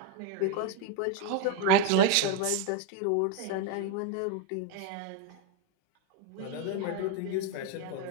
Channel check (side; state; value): both; different; correlation 0.01